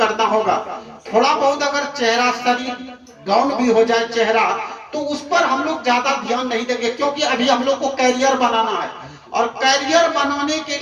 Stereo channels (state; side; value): identical; both; correlation 1.00